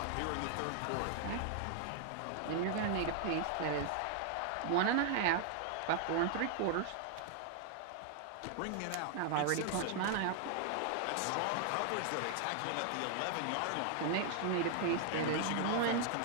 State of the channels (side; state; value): both; different; correlation 0.00